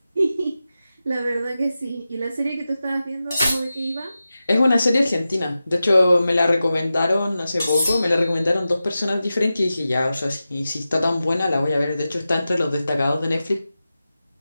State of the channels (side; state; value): both; inverted; correlation -0.93